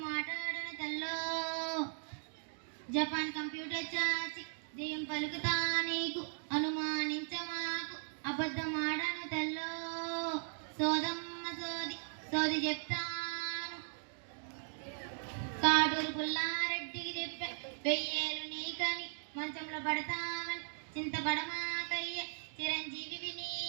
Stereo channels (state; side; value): silent; left; digital silence